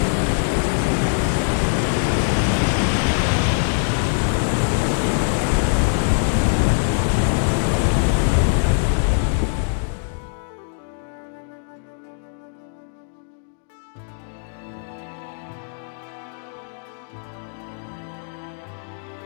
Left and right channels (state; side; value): silent; right; digital silence